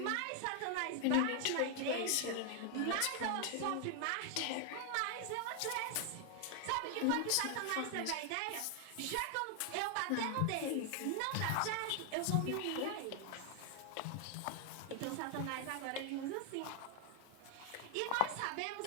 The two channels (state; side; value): different; both; correlation 0.00